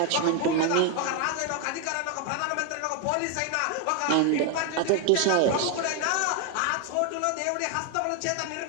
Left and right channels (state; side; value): different; both; correlation 0.01